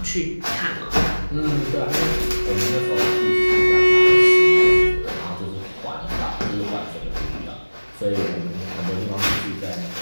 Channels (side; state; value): both; inverted; correlation -1.00